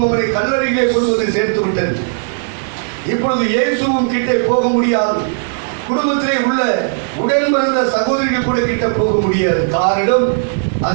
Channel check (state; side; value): silent; left; digital silence